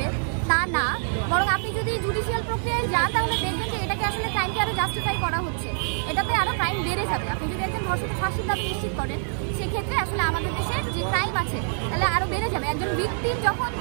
তা না, বরং আপনি যদি জুডিশিয়াল প্রক্রিয়ায় যান তাহলে দেখবেন যে এটাকে আসলে ক্রাইমকে আরও জাস্টিফাই করা হচ্ছে, এটাতে আরও ক্রাইম বেড়ে যাবে। আপনি যদি একজন ধর্ষকের ফাঁসির দাবি নিশ্চিত করেন সেক্ষেত্রে আসলে আমাদের দেশের যে ক্রাইম আছে তাহলে আরও বেড়ে যাবে। একজন ভিকটিম যখন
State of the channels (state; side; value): silent; left; 61 dB below the other